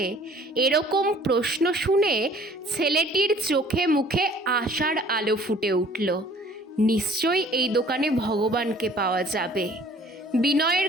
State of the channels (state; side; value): normal; both; correlation 0.54